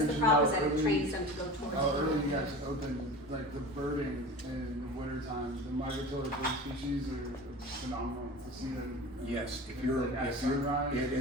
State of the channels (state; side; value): normal; both; correlation 0.34